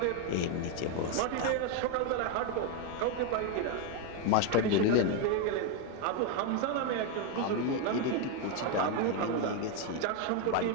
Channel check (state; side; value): different; both; correlation 0.01